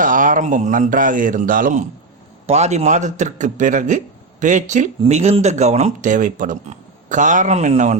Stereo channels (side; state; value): left; quieter; 3.6 dB